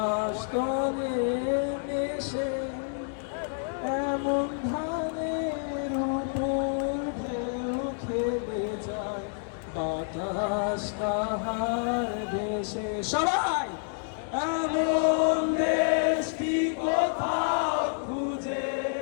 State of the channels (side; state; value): right; silent; digital silence